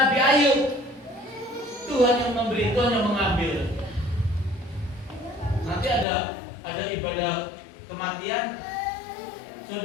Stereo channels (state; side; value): drops out; right; at 6.1 s